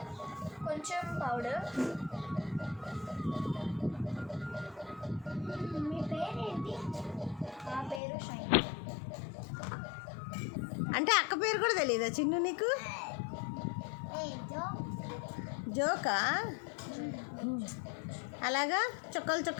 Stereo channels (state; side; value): drops out; right; at 8.0 s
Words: కొంచెం పౌడర్. మీ పేరేంటి? నా పేరు షైన్. అంటే అక్క పేరు కూడా తెలియదా చిన్ను నీకు? జోకా? అలాగా